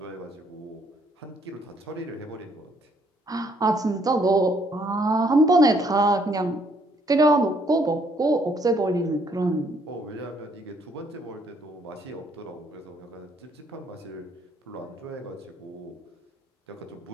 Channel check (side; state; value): both; normal; correlation 0.67